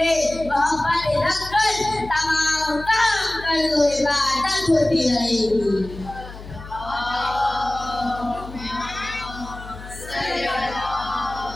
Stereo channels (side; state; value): left; noise; hum, 14 dB below the sound